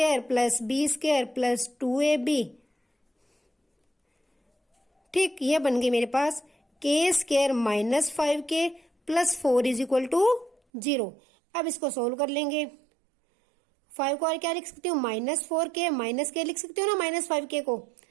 plus B square plus 2ab, ठीक, ये बन गई मेरे पास k square minus 5k plus 4 is equal to 0। अब इसको सोल्व कर लेंगे, 5 को और क्या लिख सकती हूँ माइनस 4k, माइनस k लिख सकती हूँ ना माइनस 5k को,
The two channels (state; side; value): drops out; left; at 10.6 s